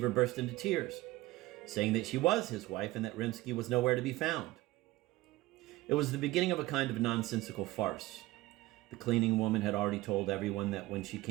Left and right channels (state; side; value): quieter; left; 18.4 dB